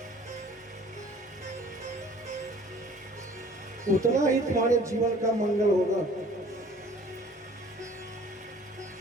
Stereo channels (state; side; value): normal; both; correlation 0.51